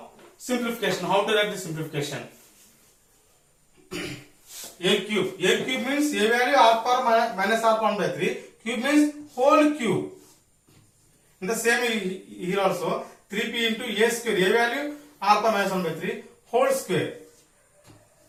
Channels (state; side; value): identical; both; correlation 1.00